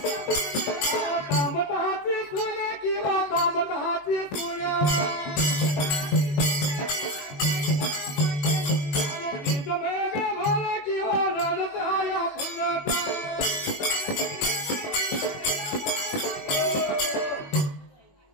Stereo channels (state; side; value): late; right; 21 ms